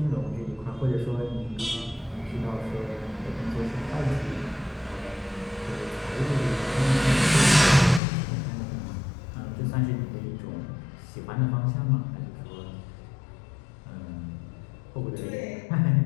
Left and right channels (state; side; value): drops out; right; at 8.0 s